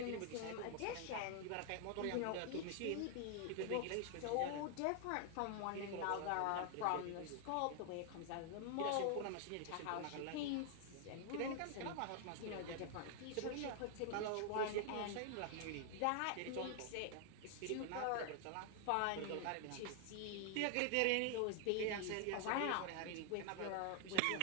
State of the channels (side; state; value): both; different; correlation 0.00